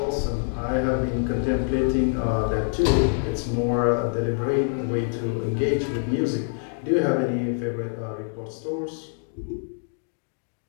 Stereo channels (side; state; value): right; silent; digital silence